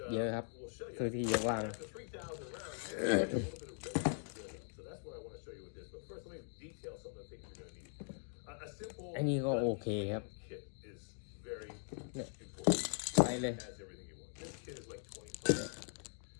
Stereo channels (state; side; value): silent; right; 50 dB below the other